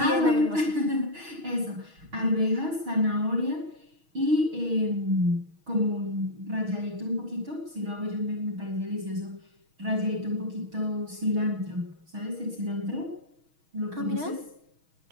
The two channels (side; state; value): left; late; 6.3 ms